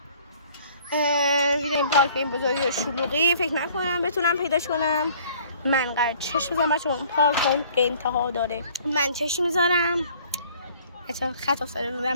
ویدیو این پارک این بزرگی و شلوغی فکر نکنم بتونم پیداش کنم. من قرار چشم بزنم بچه‌ها، اون پارک اون انتها داره. من چشم میذارم. بچه‌ها خط افتاده رو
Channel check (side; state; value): both; inverted; correlation -0.55